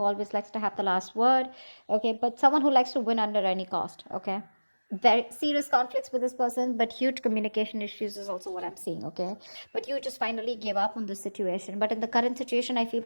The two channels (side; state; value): both; inverted; correlation -1.00